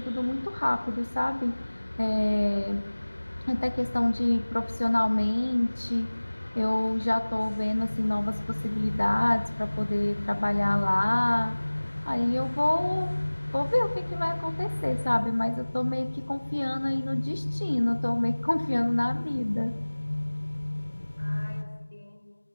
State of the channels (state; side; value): inverted; both; correlation -1.00